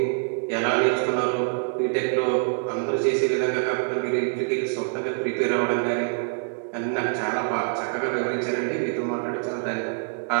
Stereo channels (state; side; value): silent; left; digital silence